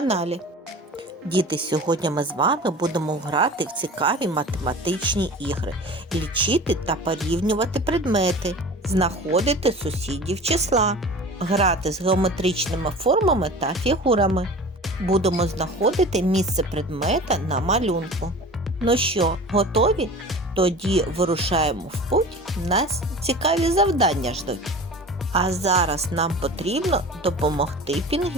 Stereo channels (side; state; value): both; normal; correlation 0.38